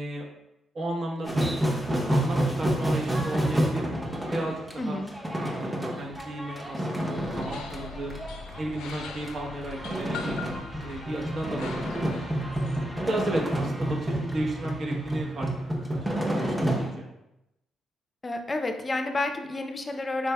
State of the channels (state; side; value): normal; both; correlation 0.86